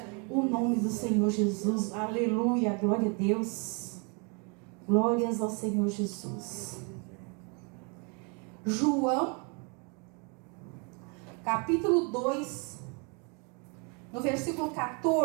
o nome do Senhor Jesus. Aleluia, glória a Deus. Glórias ao Senhor Jesus. João, capítulo 2, no versículo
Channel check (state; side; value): quieter; left; 34.4 dB